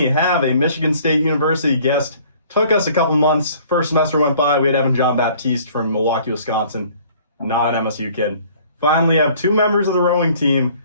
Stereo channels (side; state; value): both; inverted; correlation -0.55